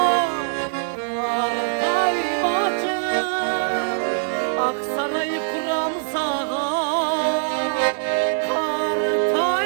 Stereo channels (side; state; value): left; silent; digital silence